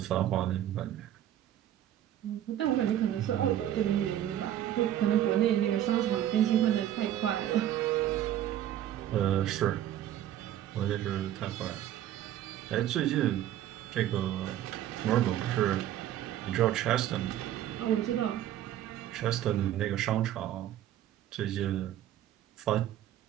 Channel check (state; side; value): quieter; left; 12.0 dB